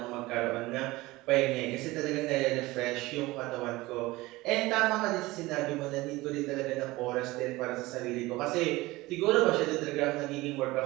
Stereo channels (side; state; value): left; quieter; 20.0 dB